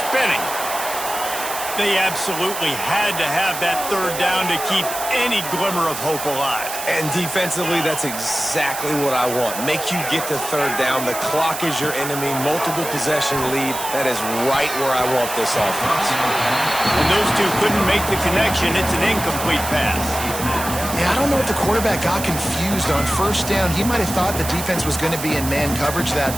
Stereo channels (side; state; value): right; noise; hiss, 7 dB below the sound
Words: They absolutely had to have that third down to keep any glimmer of hope alive. And defensively, that's exactly what I want. Make you get the third down. The clock is your enemy. Multiple possession lead. That is right where I want this offense. And those two couldn't make the connection. It's an incomplete pass. Yeah, I don't know if the quarterback got confused on first down. He might have thought the defense was going to be in man coverage